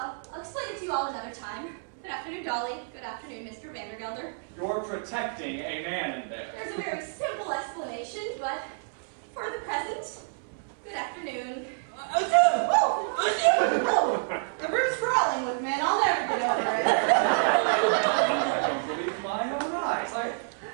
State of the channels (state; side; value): silent; left; 59 dB below the other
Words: explain it to you all another time. Good afternoon, Dolly. Good afternoon, Mr. Vandergelder. You're protecting a man in there. There's a very simple explanation, but for the present, good afternoon. The room's crawling with men. I'll never get over it. I don't believe my own eyes.